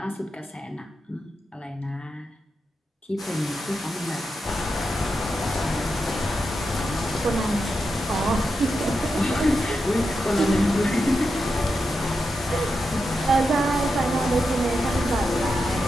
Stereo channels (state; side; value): normal; both; correlation 0.87